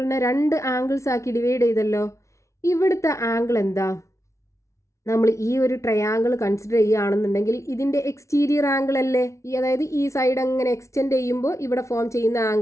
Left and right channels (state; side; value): late; right; 0.14 ms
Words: രണ്ട് ആംഗിൾസ് ആക്കി ഡിവൈഡ് ചെയ്തല്ലോ. ഇവിടുത്തെ ആംഗിൾ എന്താ, നമ്മൾ ഈ ഒരു ട്രയാങ്കിൾ കൺസിഡർ ചെയ്യുകയാണെന്നുണ്ടെങ്കിൽ ഇതിൻ്റെ എക്സ്റ്റീരിയർ ആംഗിൾ അല്ലേ, അതായത് ഈ സൈഡ് അങ്ങനെ എക്സ്റ്റെൻഡ് ചെയ്യുമ്പോൾ ഇവിടെ ഫോം ചെയ്യുന്ന